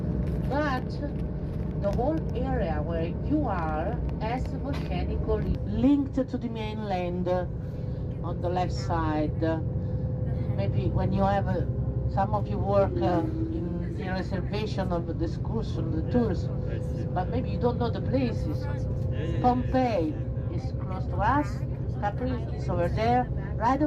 But the whole area where you are as volcanically linked to the mainland on the left side. Maybe when you have some of you work in the reservation of the excursion, the tours, but maybe you don't know the places. Pompeii is close to us, Capri is over there. Right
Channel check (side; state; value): both; identical; correlation 1.00